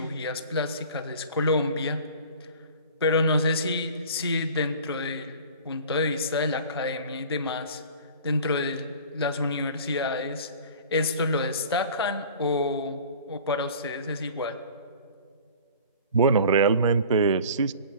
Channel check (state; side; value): inverted; both; correlation -0.43